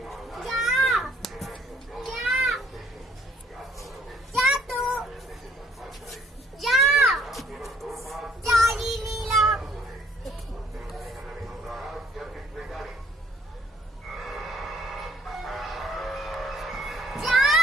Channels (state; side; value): normal; both; correlation 0.62